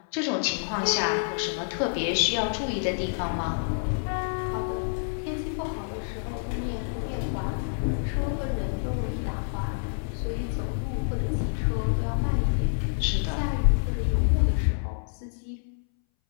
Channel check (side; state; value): right; silent; 60 dB below the other